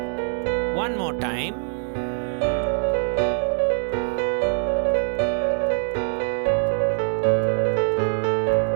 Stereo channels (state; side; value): silent; left; 63 dB below the other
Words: one more time.